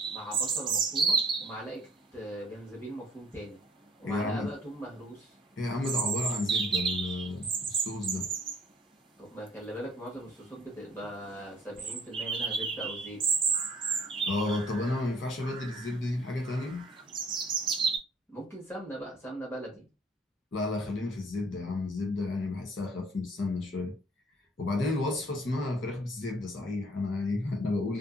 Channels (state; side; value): normal; both; correlation 0.57